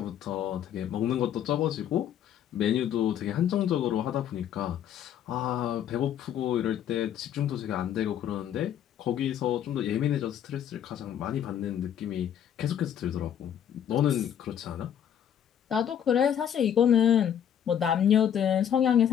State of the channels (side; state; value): right; quieter; 9.5 dB